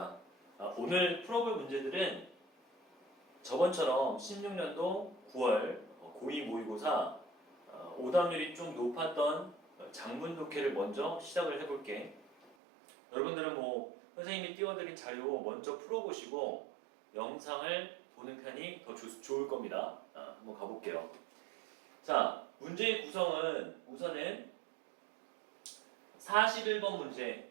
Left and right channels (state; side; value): drops out; left; at 12.5 s